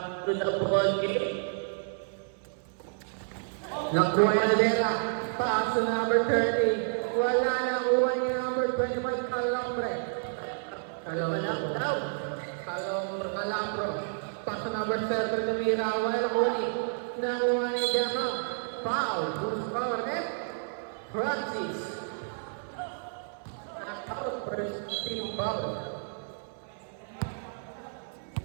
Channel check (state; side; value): silent; left; 58 dB below the other